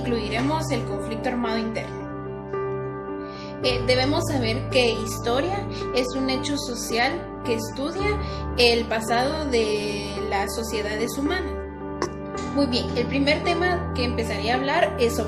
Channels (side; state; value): both; identical; correlation 1.00